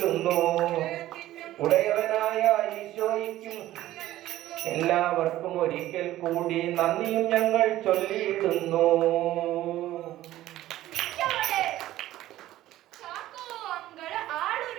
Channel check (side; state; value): left; quieter; 14.7 dB